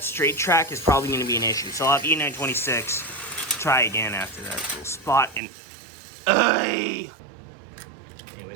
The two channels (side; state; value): left; drops out; at 5.4 s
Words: straight track is probably going to be an issue. So I'll have E926 try again after that little spot. And anyways,